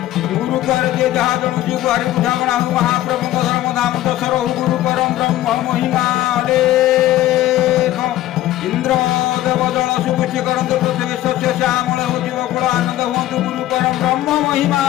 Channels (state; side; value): quieter; right; 14.4 dB